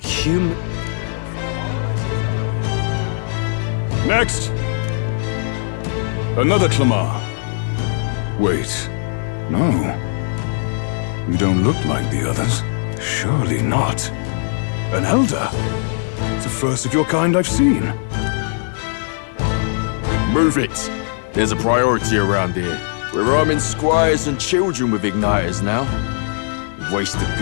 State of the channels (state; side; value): silent; right; digital silence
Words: human... Next! Another Clamar. Wait. No. You don't look like the others. Surely not. An elder? It's the first of your kind I've seen. Move it. There's a priority around here. We're arming squires and children with igniters now. We've wasted